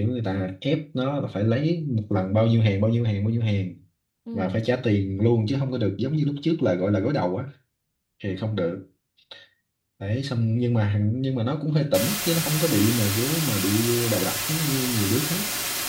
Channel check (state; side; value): identical; both; correlation 1.00